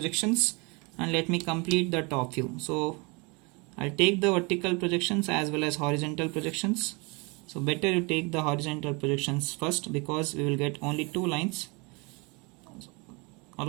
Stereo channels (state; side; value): quieter; left; 29.2 dB